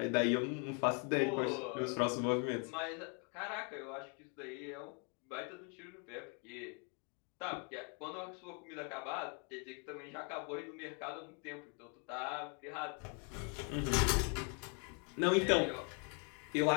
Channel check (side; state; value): right; quieter; 37.4 dB